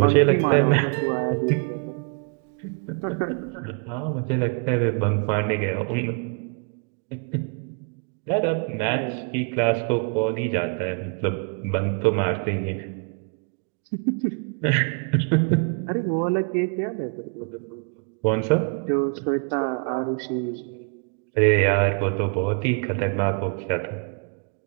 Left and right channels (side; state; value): left; quieter; 39.1 dB